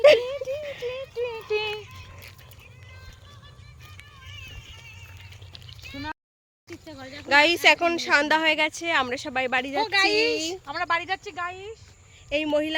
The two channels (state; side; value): identical; both; correlation 1.00